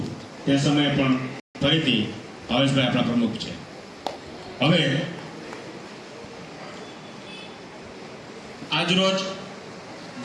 તે સમયે પણ ફરીથી ભાવેશભાઈ આપણા પ્રમુખ છે. હવે આજરોજ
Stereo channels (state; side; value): identical; both; correlation 1.00